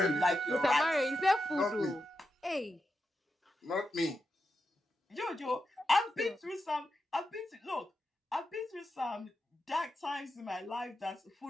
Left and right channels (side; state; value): both; normal; correlation 0.88